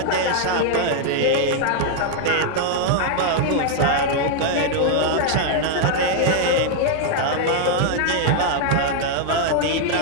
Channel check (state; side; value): different; both; correlation 0.00